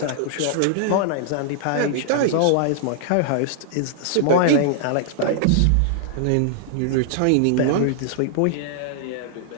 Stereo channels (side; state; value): both; different; correlation -0.01